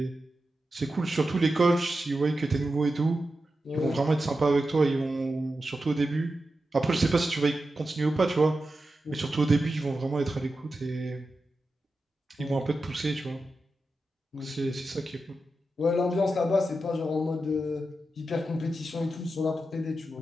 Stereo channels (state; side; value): normal; both; correlation 0.90